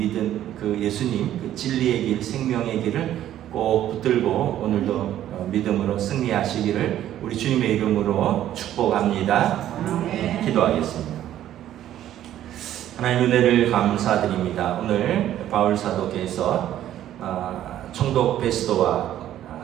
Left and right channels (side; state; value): left; quieter; 12.1 dB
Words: 그 예수님, 그 진리의 길, 생명의 길을 꼭 붙들고 오늘도 믿음으로 승리하시기를 우리 주님의 이름으로 축복합니다. 기도하겠습니다. 하나님 은혜를 감사드립니다. 오늘 바울 사도께서 총독 베스도와